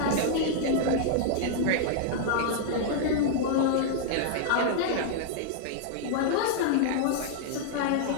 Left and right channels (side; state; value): both; different; correlation -0.01